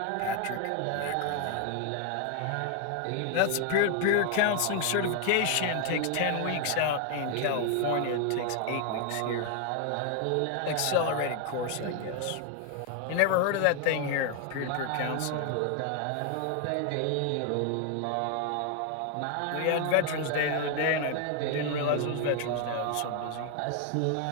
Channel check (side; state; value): both; different; correlation 0.00